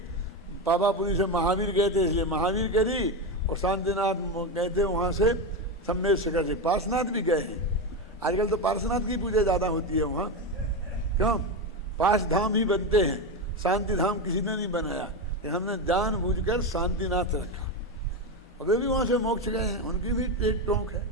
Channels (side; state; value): both; normal; correlation 0.14